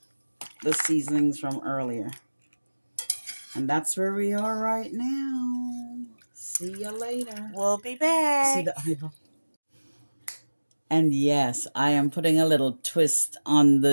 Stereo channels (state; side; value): inverted; both; correlation -1.00